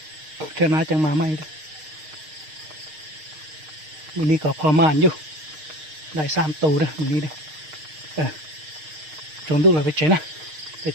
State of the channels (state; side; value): late; left; 6.5 ms